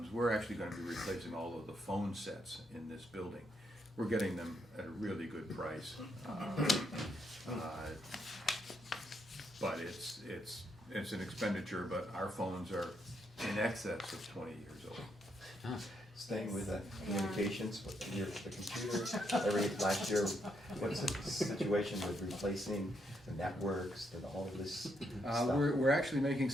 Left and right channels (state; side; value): normal; both; correlation 0.77